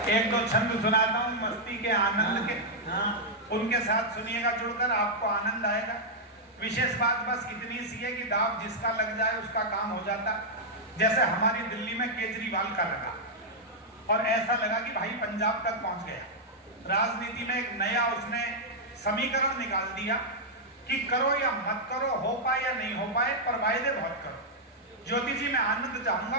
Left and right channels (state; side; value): normal; both; correlation -0.06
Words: एक दो छंद सुनाता हूं मस्ती के, आनंद के, उनके साथ सुनिएगा जुड़कर, आपको आनंद आएगा। विशेष बात बस इतनी सी है कि दाव जिसका लग जाए उसका काम हो जाता। जैसे हमारी दिल्ली में केजरीवाल का लगा, और ऐसा लगा कि भाई पंजाब तक पहुंच गया। राजनीति में एक नया उसने समीकरण निकाल दिया कि करो या मत करो, हो पाए या नहीं हो पाए, पर वायदे बहुत करो। ज्योति जी, मैं आनंद